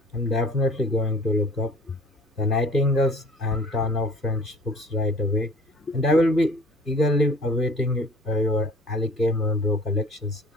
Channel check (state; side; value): normal; both; correlation 0.49